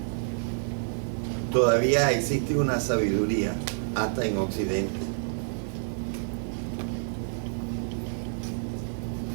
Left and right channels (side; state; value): left; silent; 59 dB below the other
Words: todavía existe una sabiduría hasta en Occidente,